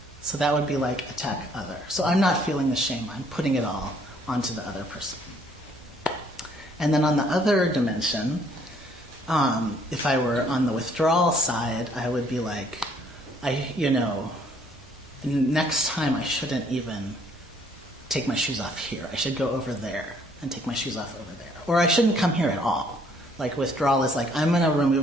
So that would be like attack other. So I'm not feeling the shame, I'm putting it all onto the other person. And then on the other dimension, if I were on the withdrawal side, I would be like, next time I shouldn't even take my shoes off here. I should go over there and take my shoes off over there. Or I shouldn't come here at all. Like withdrawal is like, I'm going to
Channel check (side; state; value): both; normal; correlation 0.63